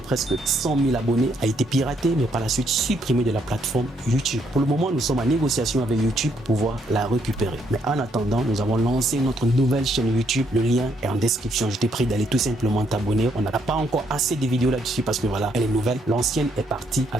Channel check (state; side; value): normal; both; correlation 0.72